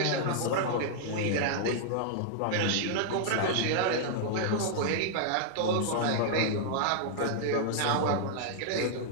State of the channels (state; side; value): different; both; correlation -0.01